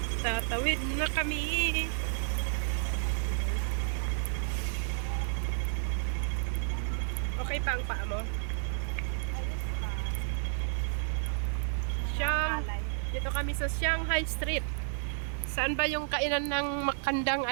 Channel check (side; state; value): left; silent; digital silence